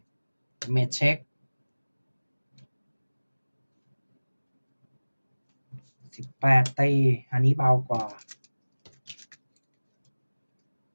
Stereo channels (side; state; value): both; inverted; correlation -1.00